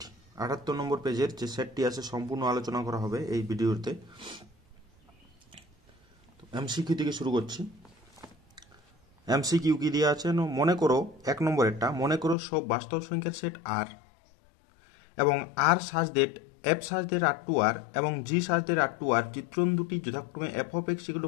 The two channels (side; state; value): right; drops out; at 12.4 s